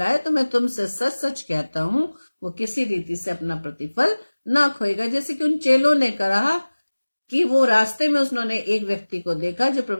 तो मैं तुमसे सच सच कहता हूं वो किसी रीति से अपना प्रतिफल ना खोएगा। जैसे कि उन चेलों ने कहा कि वो रास्ते में उन्होंने एक व्यक्ति को देखा जो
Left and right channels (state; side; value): inverted; both; correlation -1.00